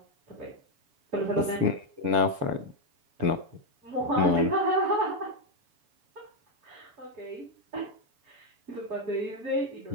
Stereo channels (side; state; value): left; late; 7.1 ms